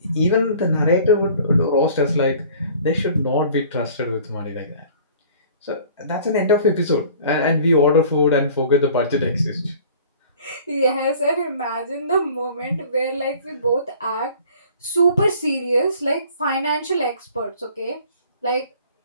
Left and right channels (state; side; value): inverted; both; correlation -0.50